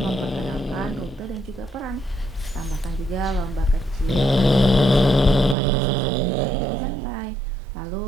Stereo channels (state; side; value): drops out; left; at 5.6 s